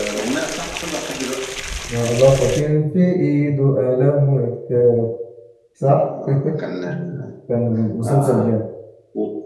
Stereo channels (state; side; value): identical; both; correlation 1.00